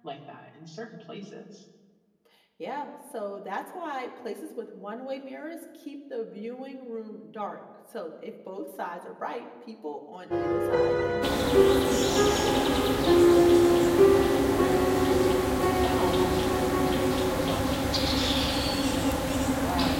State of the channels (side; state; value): both; identical; correlation 1.00